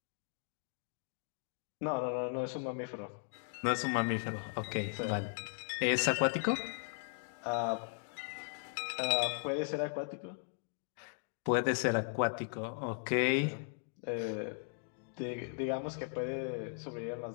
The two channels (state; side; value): silent; right; 53 dB below the other